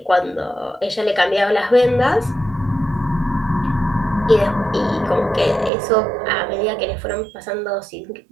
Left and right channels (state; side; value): drops out; left; at 5.7 s